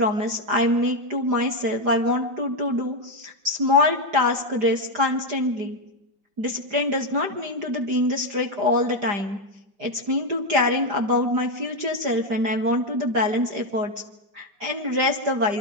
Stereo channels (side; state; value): left; late; 5.0 ms